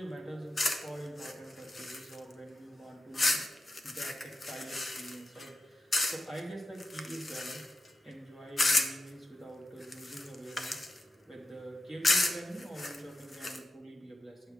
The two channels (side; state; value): both; normal; correlation 0.91